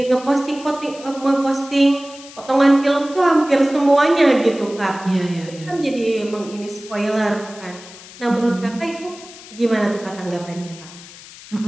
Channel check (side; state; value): left; noise; hiss, 18 dB below the sound